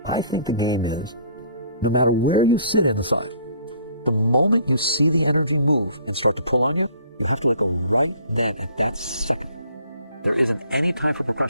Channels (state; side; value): inverted; both; correlation -0.57